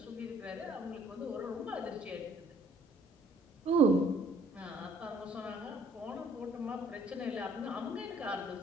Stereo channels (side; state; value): both; normal; correlation 0.61